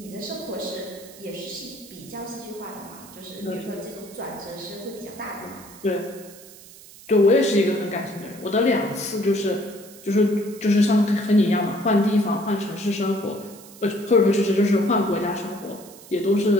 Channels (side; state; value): right; noise; hiss, 20 dB below the sound